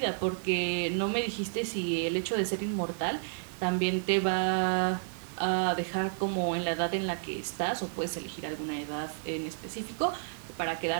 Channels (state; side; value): silent; left; 57 dB below the other